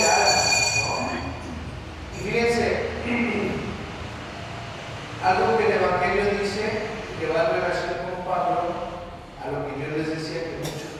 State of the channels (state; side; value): identical; both; correlation 1.00